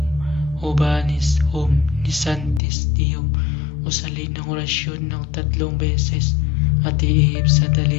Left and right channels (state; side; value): drops out; right; at 2.6 s